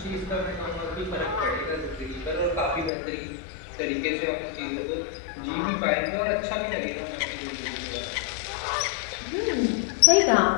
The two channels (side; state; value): right; drops out; at 2.9 s